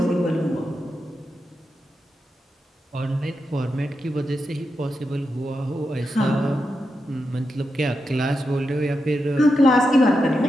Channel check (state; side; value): normal; both; correlation 0.87